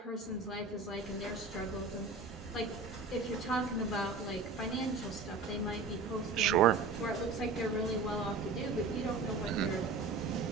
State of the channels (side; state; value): left; quieter; 4.1 dB